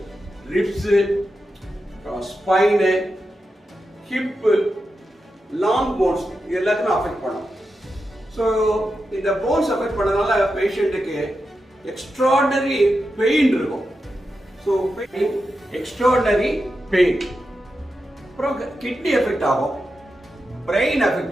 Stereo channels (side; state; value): both; normal; correlation 0.89